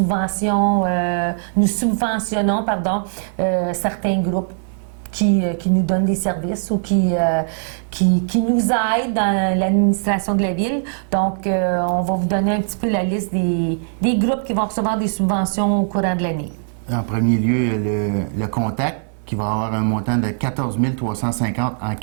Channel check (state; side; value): silent; left; 66 dB below the other